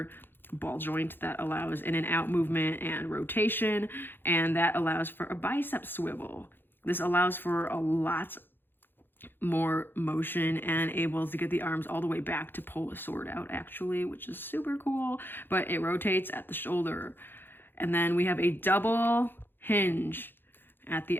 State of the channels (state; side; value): late; right; 0.099 ms